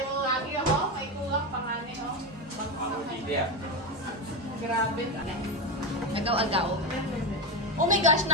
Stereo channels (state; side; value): normal; both; correlation 0.15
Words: mo lagi ako. May kulang panganin ako. Grabe. Agaw-agaw. Oh my gosh,